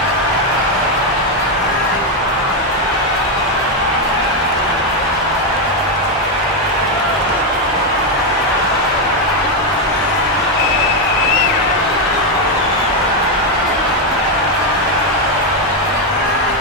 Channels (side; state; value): both; normal; correlation 0.05